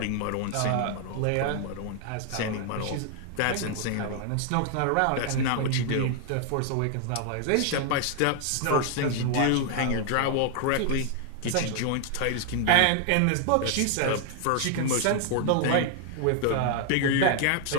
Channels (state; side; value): different; both; correlation 0.00